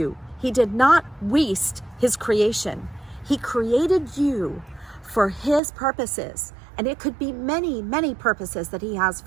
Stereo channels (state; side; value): drops out; left; at 5.6 s